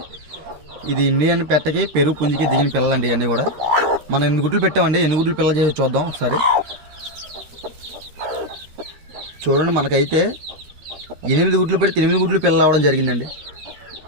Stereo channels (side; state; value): left; late; 13 ms